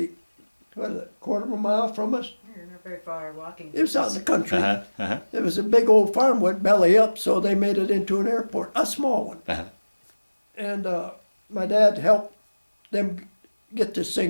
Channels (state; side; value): inverted; both; correlation -1.00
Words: what is it, quarter of a mile from us? You're not very far walking. It was out in the country. Uh-huh. It was a big old farm, went belly up, so they made it into an airport, a small one. Uh-huh. And my dad helped them get this